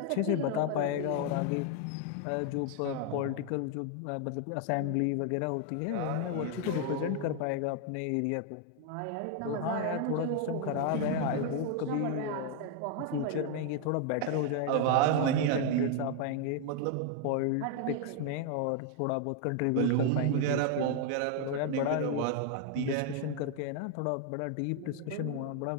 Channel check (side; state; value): both; different; correlation 0.00